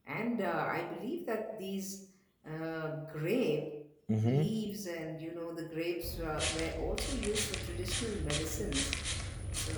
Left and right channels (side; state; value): both; identical; correlation 1.00